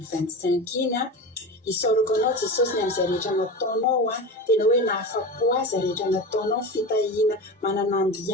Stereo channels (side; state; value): both; normal; correlation 0.26